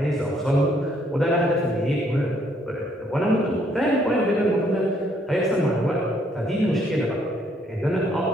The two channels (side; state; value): both; normal; correlation 0.68